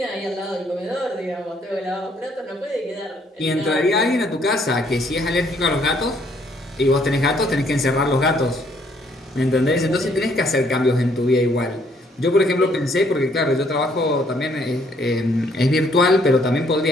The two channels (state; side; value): normal; both; correlation 0.66